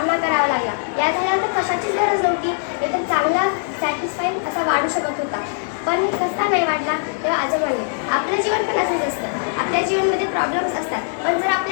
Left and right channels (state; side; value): silent; right; digital silence